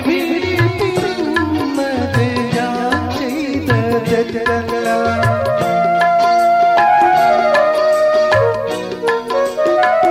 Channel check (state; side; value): identical; both; correlation 1.00